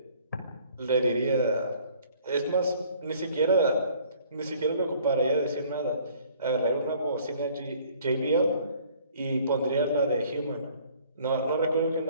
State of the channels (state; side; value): inverted; both; correlation -0.57